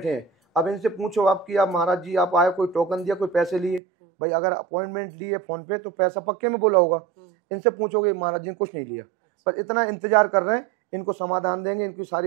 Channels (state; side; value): drops out; left; at 3.8 s